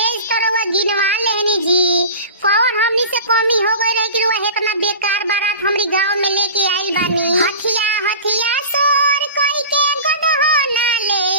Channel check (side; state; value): both; inverted; correlation -0.36